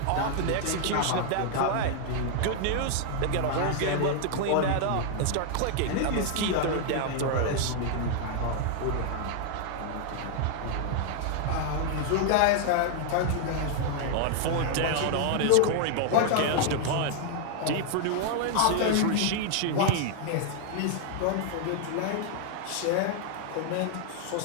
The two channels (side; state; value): both; different; correlation 0.00